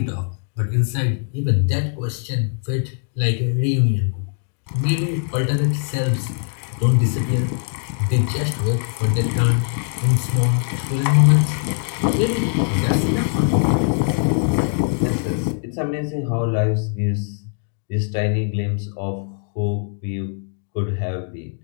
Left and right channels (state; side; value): silent; right; 59 dB below the other